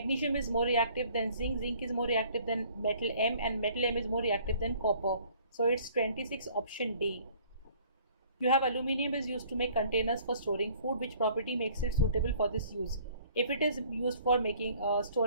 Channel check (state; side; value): inverted; both; correlation -0.56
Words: is more reactive than zinc, zinc is more reactive than metal M, and metal M is more reactive than copper. So it's 26, option D. You have aluminium is used to make containers for storing food. Which property makes it suitable for this use? If it is used for making